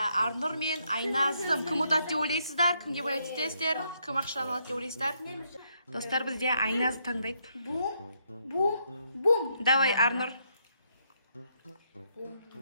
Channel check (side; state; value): both; inverted; correlation -0.75